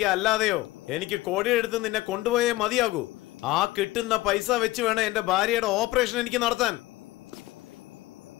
അല്ലാതെയോ എനിക്ക് കോടിയെടുത്ത് നിന്നെ കൊണ്ടുപോയേ മതിയാകൂ. ആ കിട്ടുന്ന പൈസ വെച്ച് വേണം എന്റെ ഭാര്യയുടെ ഓപ്പറേഷൻ എനിക്ക് നടത്താൻ.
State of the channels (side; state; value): right; quieter; 18.3 dB